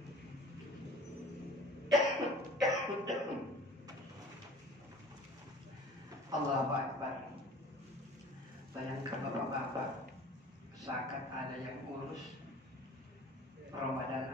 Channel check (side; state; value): both; normal; correlation 0.45